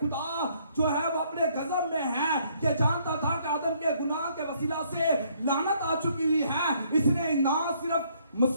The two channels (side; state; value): both; inverted; correlation -0.67